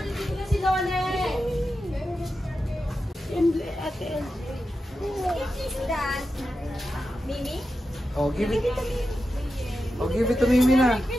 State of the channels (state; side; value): normal; both; correlation 0.90